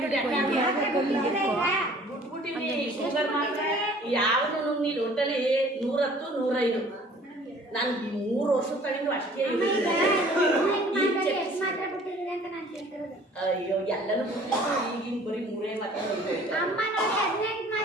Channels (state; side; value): normal; both; correlation 0.52